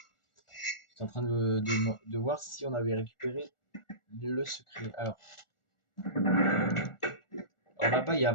J'étais en train de voir si on avait récupéré le secret. Alors là-bas, il y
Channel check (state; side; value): late; right; 1.4 ms